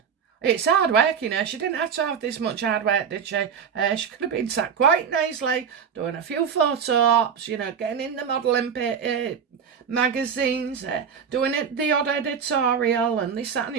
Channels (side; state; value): left; quieter; 7.1 dB